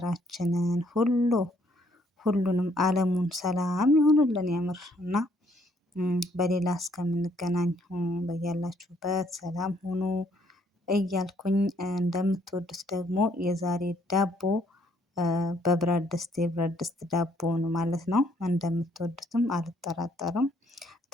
ሁሉንም ዓለሙን ሰላም ይሁንልን የምር እና በሌላ እስከምንገናኝ በያላችሁበት ሰላም ሁኑ እያልኩኝ እንደምትወዱት ደግሞ የዛሬ ዳቦ በብረት ድስት የብረት ድስት ዳቦውን ማለት ነው። እንደምትወዱትም አልጠራጠርም።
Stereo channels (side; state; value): both; normal; correlation 0.67